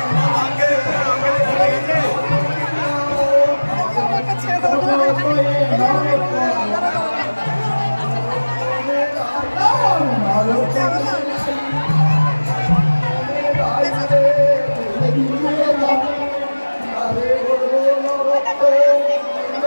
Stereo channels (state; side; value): inverted; both; correlation -1.00